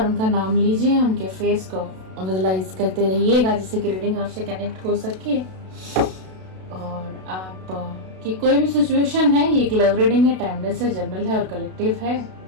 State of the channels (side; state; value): left; late; 32 ms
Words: उनका नाम लीजिए, उनके फेस को विजुलाइज करते रहिएगा जिससे कि रीडिंग आपसे कनेक्ट हो सके। और आप की कोई भी सिचुएशन है, ये एक लव रीडिंग है, टाइमलेस है, जनरल है और कलेक्टिव है।